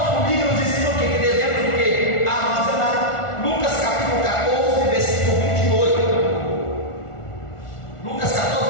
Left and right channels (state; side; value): late; right; 1.4 ms